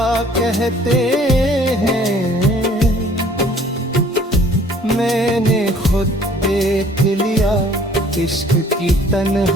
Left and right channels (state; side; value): normal; both; correlation 0.56